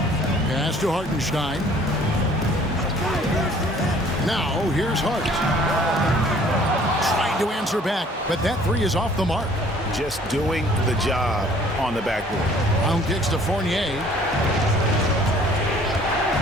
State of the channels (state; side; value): normal; both; correlation 0.55